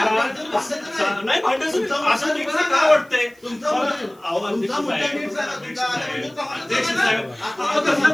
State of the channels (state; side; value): noise; right; hiss, 30 dB below the sound